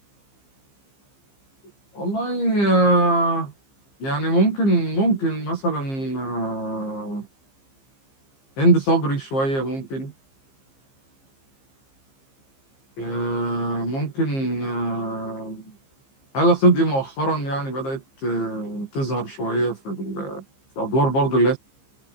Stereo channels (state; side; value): late; right; 15 ms